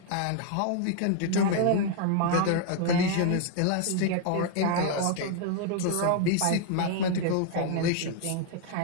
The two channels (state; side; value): different; both; correlation 0.00